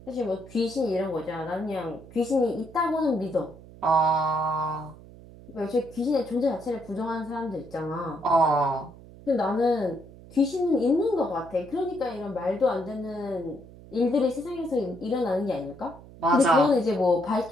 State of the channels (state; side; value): noise; right; hum, 19 dB below the sound